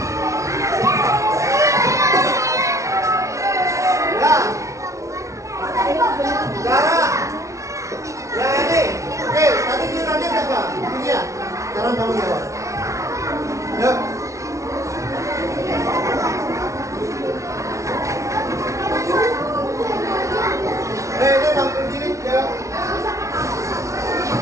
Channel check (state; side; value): late; left; 0.15 ms